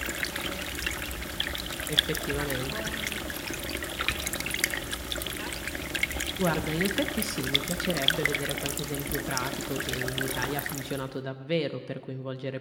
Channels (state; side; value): identical; both; correlation 1.00